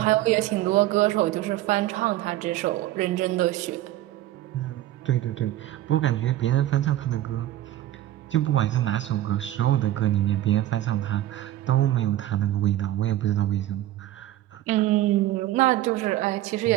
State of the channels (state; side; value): quieter; left; 14.1 dB